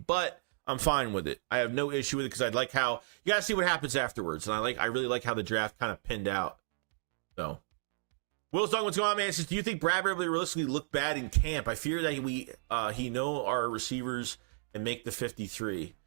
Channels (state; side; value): silent; left; digital silence